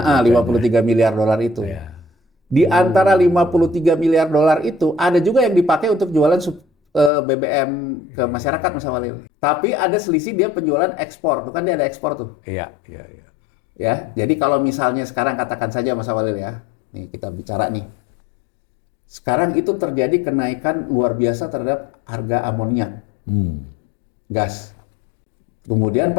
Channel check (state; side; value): drops out; right; at 7.1 s